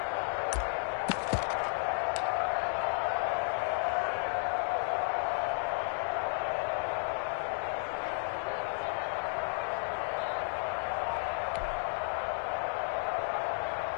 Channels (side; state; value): right; silent; 56 dB below the other